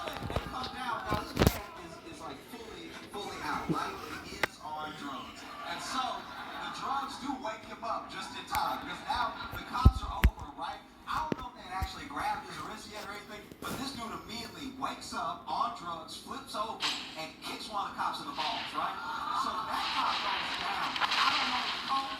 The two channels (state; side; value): identical; both; correlation 1.00